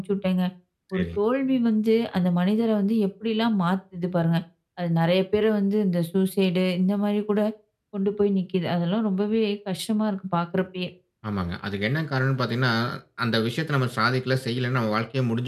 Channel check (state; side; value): identical; both; correlation 1.00